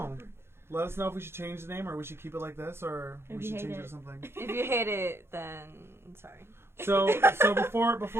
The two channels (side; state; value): left; late; 0.12 ms